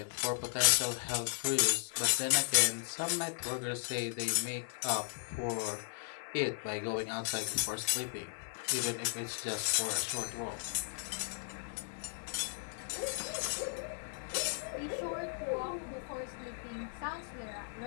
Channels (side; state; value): right; silent; 54 dB below the other